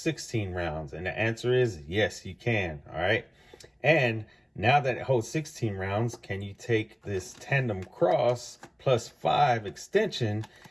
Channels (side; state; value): both; identical; correlation 1.00